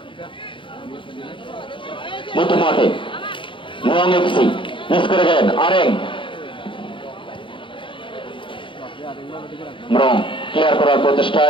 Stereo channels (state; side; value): late; right; 0.25 ms